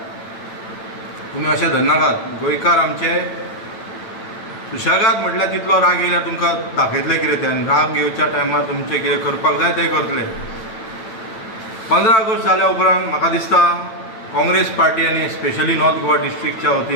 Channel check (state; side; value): late; right; 9.0 ms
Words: तुमी अशें धरनाकात. गोंयकार आमचे सुशेगाद म्हटल्यार तितलो राग येयल्यार तुमकां दाखयतले कितें ते, आनी राग येवच्या टायमार तुमचें कितें करपाक जाय तें करतले. 15 ऑगस्ट जाल्या उपरांत म्हाका दिसता काँग्रेस पार्टी आनी स्पेशली नॉर्थ गोवा डिस्ट्रिक्टच्या